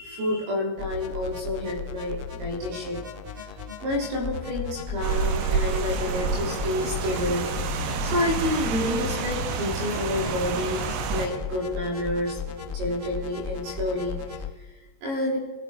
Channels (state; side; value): late; left; 22 ms